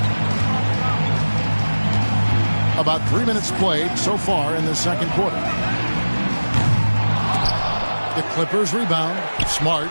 About 3 minutes played so far in the second quarter. The Clippers rebound. Smart.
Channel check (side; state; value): both; inverted; correlation -1.00